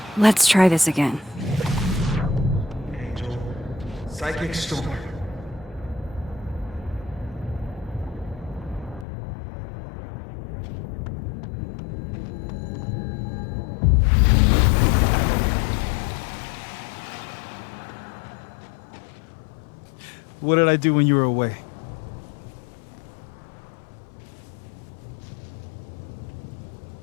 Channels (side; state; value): right; drops out; at 9.1 s